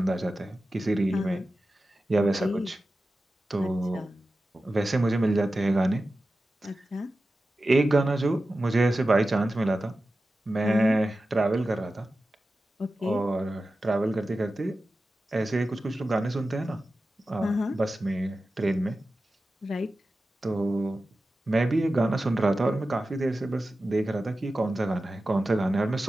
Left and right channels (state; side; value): normal; both; correlation 0.93